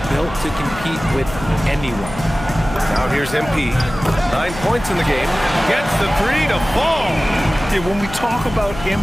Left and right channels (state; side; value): noise; left; hum, 12 dB below the sound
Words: built to compete with anyone. Now here's MP. 9 points in the game. Gets the 3 to fall. Yeah, when we talk about